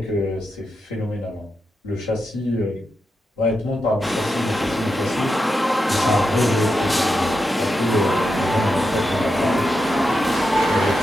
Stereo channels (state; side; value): normal; both; correlation 0.87